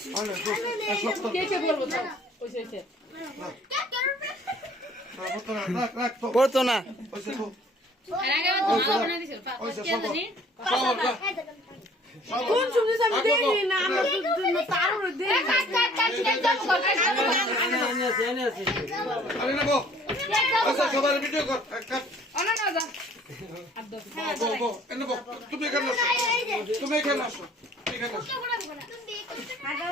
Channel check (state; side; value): normal; both; correlation 0.55